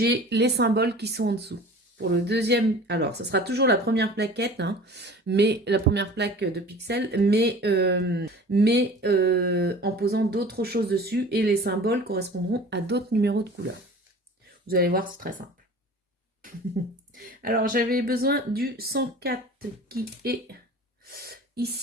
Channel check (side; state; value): both; normal; correlation 0.42